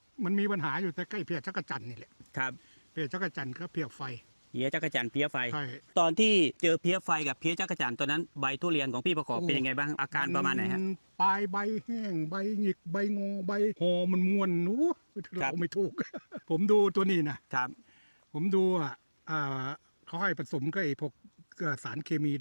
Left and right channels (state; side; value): inverted; both; correlation -1.00